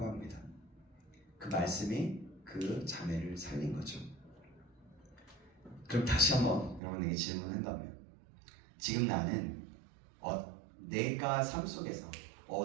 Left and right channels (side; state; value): left; drops out; at 6.8 s